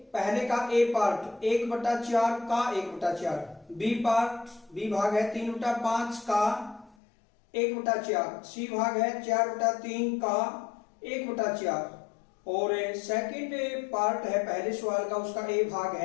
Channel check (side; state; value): right; drops out; at 7.0 s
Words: पहले का ए पार्ट 1/4 का 1/4, बी पार्ट बी भाग है 3/5 का 1/4, सी भाग है 4/3 का 1/4 और सेकंड पार्ट है पहले सवाल का, उसका ए भाग